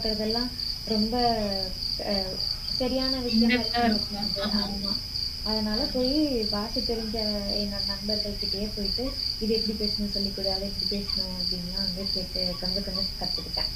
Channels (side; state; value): both; identical; correlation 1.00